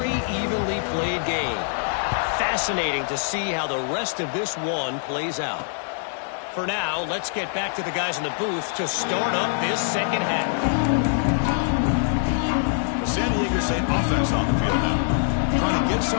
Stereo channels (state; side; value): silent; right; digital silence